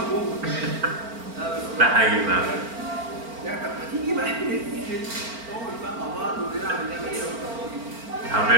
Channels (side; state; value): left; late; 4.4 ms